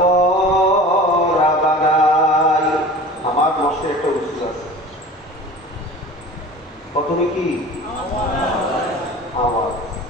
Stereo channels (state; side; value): normal; both; correlation 0.39